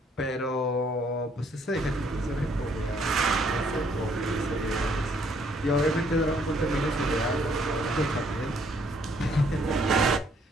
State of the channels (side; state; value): both; normal; correlation 0.66